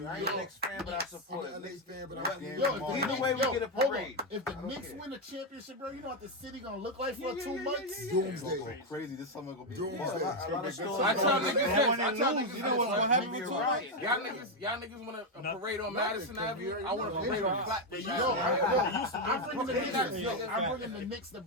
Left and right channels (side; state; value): both; normal; correlation 0.04